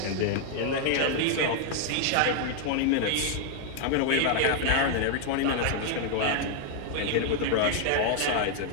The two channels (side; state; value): both; different; correlation 0.00